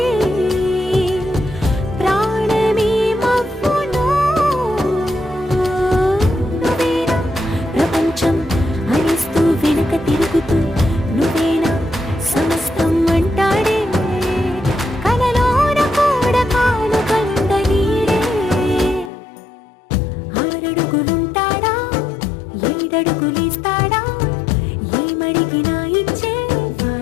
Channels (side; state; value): right; drops out; at 19.1 s